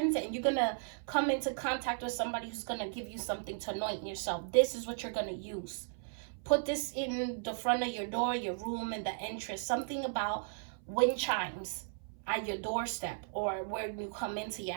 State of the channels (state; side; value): silent; left; 54 dB below the other